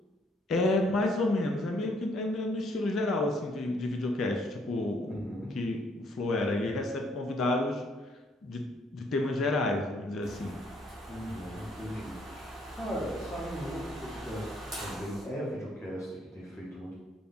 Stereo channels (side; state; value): both; normal; correlation 0.67